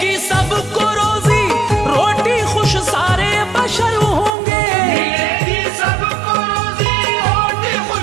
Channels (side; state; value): left; drops out; at 4.3 s